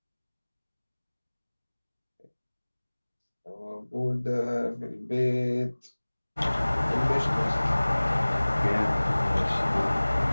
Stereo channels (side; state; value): both; inverted; correlation -1.00